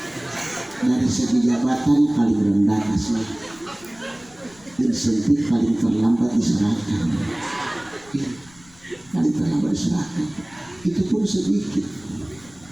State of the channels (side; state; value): left; noise; rumble, 26 dB below the sound